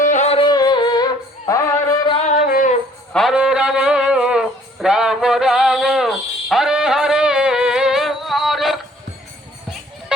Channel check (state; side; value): normal; both; correlation 0.58